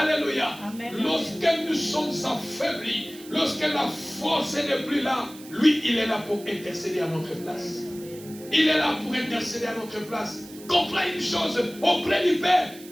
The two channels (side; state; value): right; noise; hiss, 19 dB below the sound